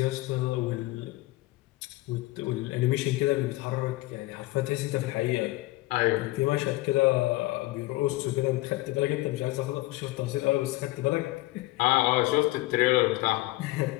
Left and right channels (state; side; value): quieter; right; 19.3 dB